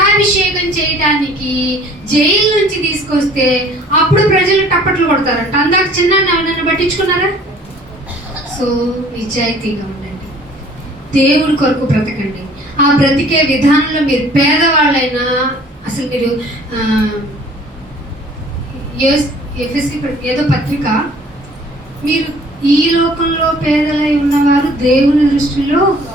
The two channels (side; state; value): both; normal; correlation 0.53